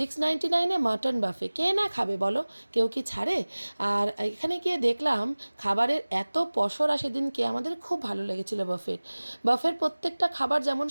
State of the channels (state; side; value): inverted; both; correlation -1.00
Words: মটন বাফে, কে না খাবে বলো, কেউ কি ছাড়ে? আর এখানে গিয়ে দেখলাম খাবারের এত পসরা, সেদিনকে আমাদের খুব ভালো লেগেছিল বাফের প্রত্যেকটা খাবার যেমন